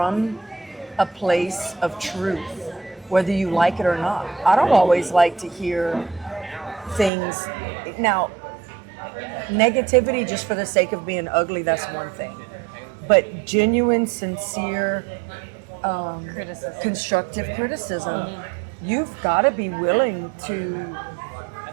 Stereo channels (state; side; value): drops out; left; at 7.1 s